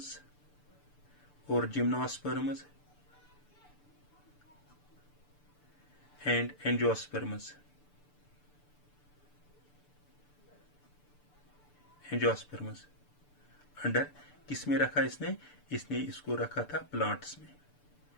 और जिम्नोस्पर्म्स एंड एंजियोस्पर्म्स अंडर किस में रखा इसने इसको रखा था प्लांट्स में।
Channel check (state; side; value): late; right; 6.8 ms